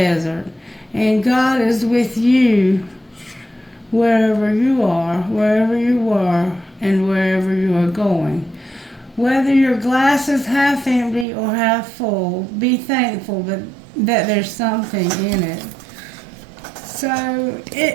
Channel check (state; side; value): drops out; left; at 11.2 s